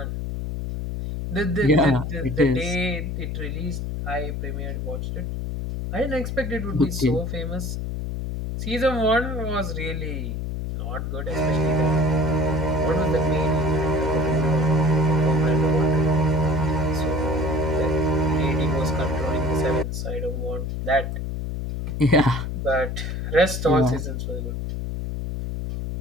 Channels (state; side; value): noise; left; hum, 4 dB below the sound